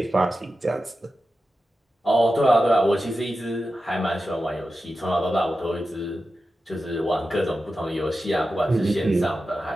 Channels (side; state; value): both; normal; correlation 0.92